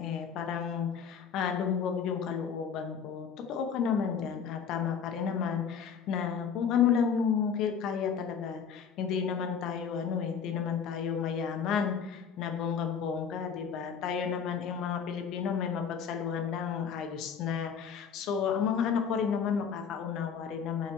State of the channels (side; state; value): right; quieter; 6.9 dB